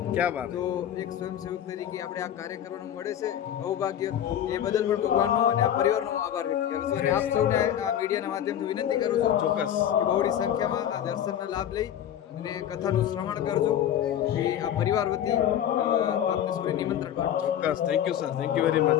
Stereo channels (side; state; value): right; quieter; 10.4 dB